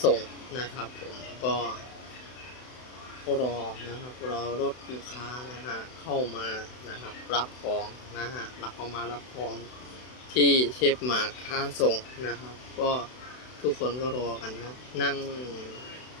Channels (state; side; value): late; right; 32 ms